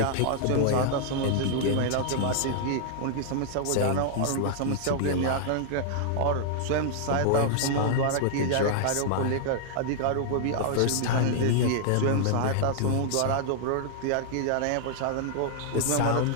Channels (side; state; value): both; different; correlation -0.01